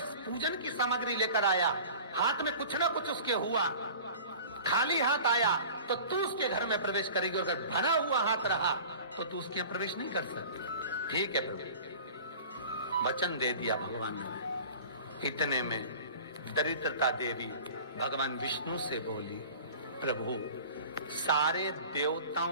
पूजन की सामग्री लेकर आया, हाथ में कुछ ना कुछ उसके हुआ, खाली हाथ आया, तो तू उसके घर में प्रवेश करेगी, और अगर भरा हुआ हाथ रहा तो तू उसके यहाँ प्रवेश नहीं कर सकती। ठीक है प्रभु, वचन दे दिया भगवान ने। इतने में दरिद्रता देवी भगवान विष्णु से बोली, प्रभु सारे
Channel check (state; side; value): inverted; both; correlation -0.41